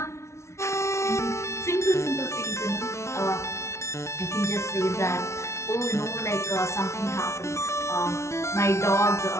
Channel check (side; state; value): right; late; 0.13 ms